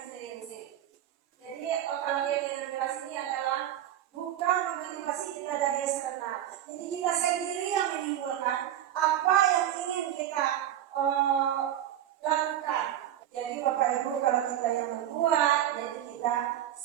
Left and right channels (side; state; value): left; quieter; 11.5 dB